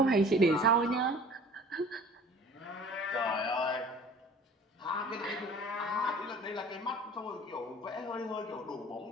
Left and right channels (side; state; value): both; normal; correlation 0.46